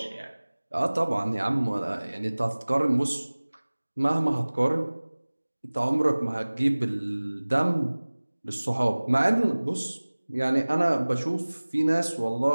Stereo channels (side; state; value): both; inverted; correlation -1.00